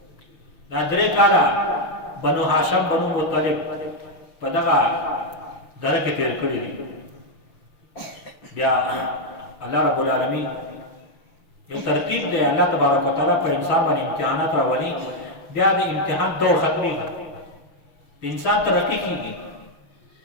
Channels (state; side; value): late; right; 6.2 ms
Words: دا 3 کاله بنو هاشم بنو مطلب په دغه دره کې تېر کړي دي بیا الله رب العالمین یو ترتیب دی الله تبارک وتعالی په انسان باندې امتحانات راولي بیا د امتحان دور ختمېږي د انسان ترقي کېږي